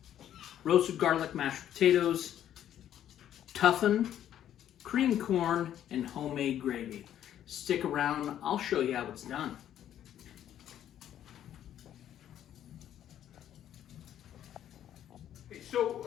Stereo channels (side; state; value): right; quieter; 10.9 dB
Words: roasted garlic mashed potatoes, toughen, creamed corn, and homemade gravy. Stick around, I'll show you how it's done. So,